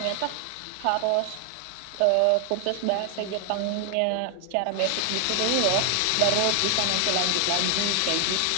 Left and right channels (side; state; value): both; different; correlation 0.00